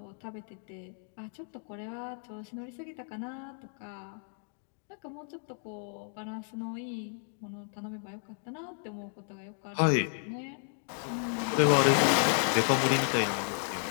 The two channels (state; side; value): silent; right; 56 dB below the other